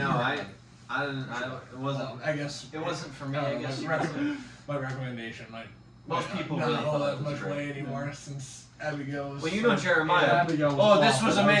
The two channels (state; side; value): identical; both; correlation 1.00